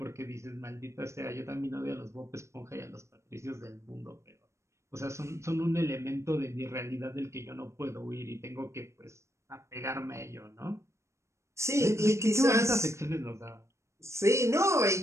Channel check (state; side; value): late; left; 0.14 ms